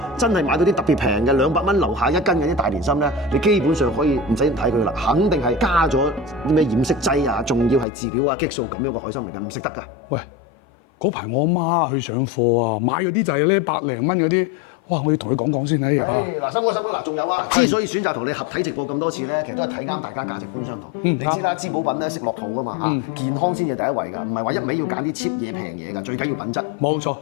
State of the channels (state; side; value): drops out; right; at 7.9 s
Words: 真係買到啲特別平嘅200蚊樓下一斤嘅啲大連參咧，你基本上可以唔使睇佢啦，肯定係加咗啲咩染色劑啊，仲要係飼料啊、激素咁樣嘅海參嚟㗎，唔食得㗎。喂，嗰排我阿媽去上課啊，買嗰啲就係咧100零蚊嗰啲。哇！我要同佢講講先睇。嗱，森哥，嗱，仲有啊！之所以選擇同你合體直播咁多次咧，其實都係睇啱大家價值觀相同。你知啦，滋補品咧食落肚啊嘛嚇，健康先至第一位㗎，唔係話一味要揀啲 cheap 嘢平嘢㗎，最緊要品質。冇錯，